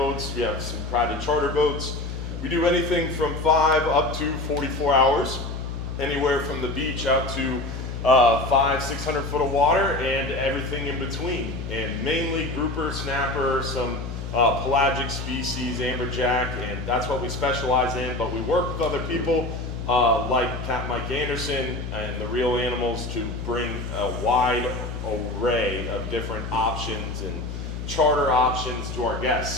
We have some private charter boats. We do anything from 5 up to 44 hours, anywhere from the beach out to 500-600 foot of water and everything in between. And mainly grouper, snapper, some pelagic species, amberjack, and that's what we specialize in. But we work with other people like Capt Mike Anderson and the Real Animals to bring a wide array of different options and charter options to our guests.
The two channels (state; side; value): noise; left; hum, 6 dB below the sound